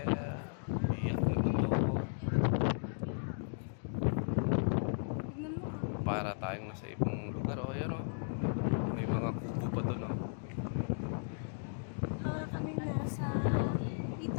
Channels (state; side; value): silent; right; digital silence